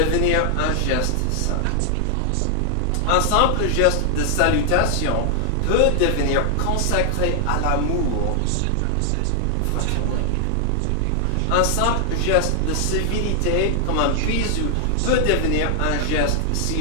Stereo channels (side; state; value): both; different; correlation 0.00